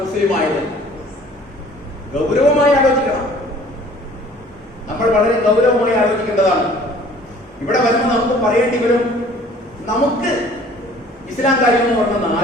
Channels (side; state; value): both; normal; correlation 0.52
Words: മുസ്ലിം ആയത്? ഗൗരവമായി ആലോചിക്കണം. നമ്മൾ വളരെ ഗൗരവമായി ആലോചിക്കേണ്ടതാണ്. ഇവിടെ വരുമ്പോൾ നമുക്ക് പറയേണ്ടി വരും, നമുക്ക് ഇസ്ലാം കാര്യം എന്ന് പറഞ്ഞ